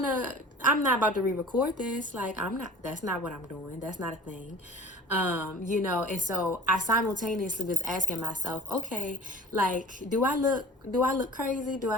not about to re-record this. Like, that's not what I'm doing. That's not a thing. And so I simultaneously was asking myself, okay, like, do I look crazy? Do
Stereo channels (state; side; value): normal; both; correlation 0.45